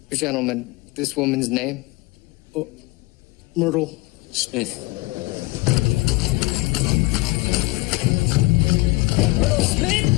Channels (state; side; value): quieter; right; 22.6 dB